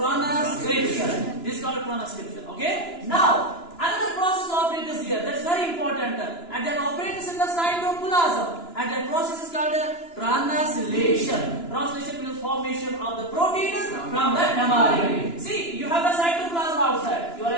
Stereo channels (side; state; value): right; late; 2.9 ms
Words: This is called transcription. Okay. Now, another process operates here. That's very important, and that operates in the cytoplasm, and that process is called translation. Translation means formation of the proteins from the mRNA. See, you have the cytoplasm outside. You are